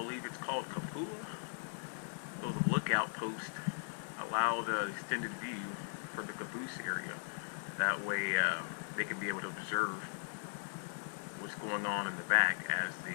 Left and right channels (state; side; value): silent; right; digital silence